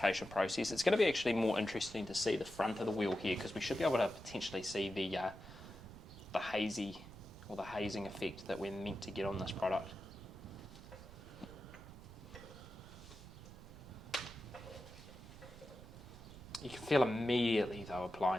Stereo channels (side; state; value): right; noise; rumble, 16 dB below the sound